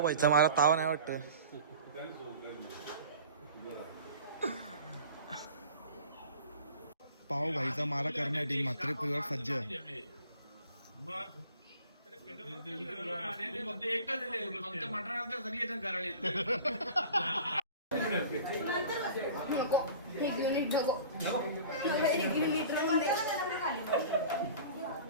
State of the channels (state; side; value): inverted; both; correlation -0.42